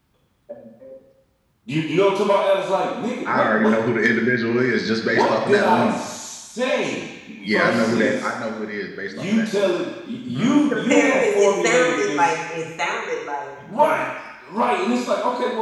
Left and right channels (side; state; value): both; identical; correlation 1.00